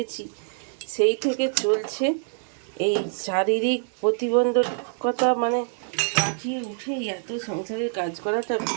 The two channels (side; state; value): left; silent; digital silence